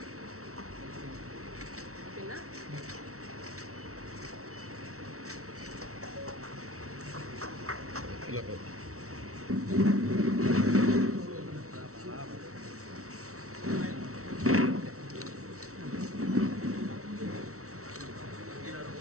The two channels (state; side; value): late; left; 0.64 ms